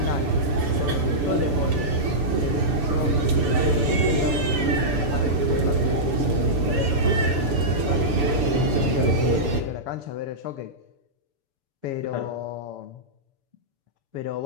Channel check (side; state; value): left; late; 6.9 ms